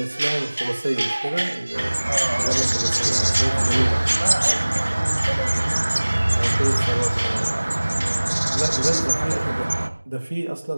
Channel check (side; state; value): both; inverted; correlation -1.00